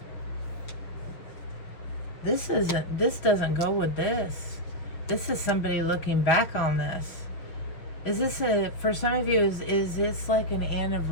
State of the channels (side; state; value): right; late; 6.5 ms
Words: This doesn't go with this. This is somebody looking back on this. Is this for some of you, is this like an